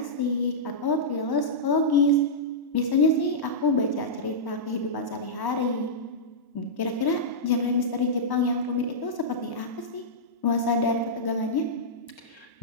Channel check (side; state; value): right; late; 1.1 ms